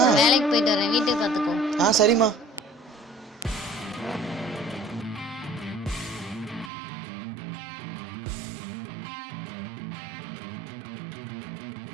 வேலைக்கு போயிட்டு வரேன், வீட்டுக்கு பார்த்துக்கோ. சரிம்மா.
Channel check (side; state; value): left; drops out; at 6.7 s